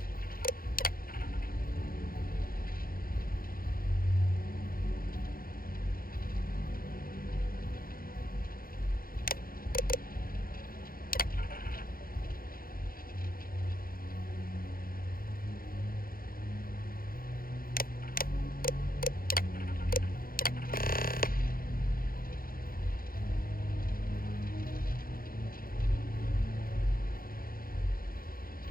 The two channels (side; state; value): right; late; 0.42 ms